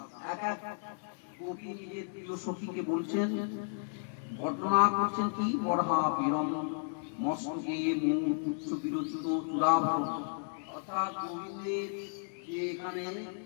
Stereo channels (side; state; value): right; silent; digital silence